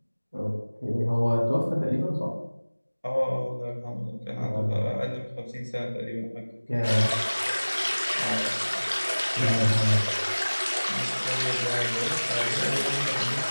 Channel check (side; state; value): both; inverted; correlation -1.00